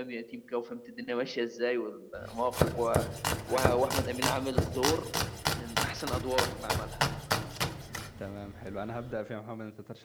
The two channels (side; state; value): both; identical; correlation 1.00